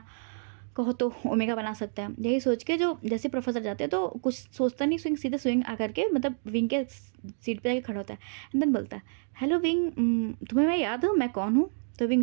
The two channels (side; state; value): left; silent; 59 dB below the other